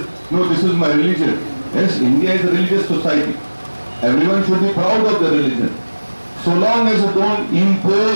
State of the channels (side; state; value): both; inverted; correlation -1.00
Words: no, this is my religion. Yes, India is a religious society. Everyone should be proud of their religion. So long as you don't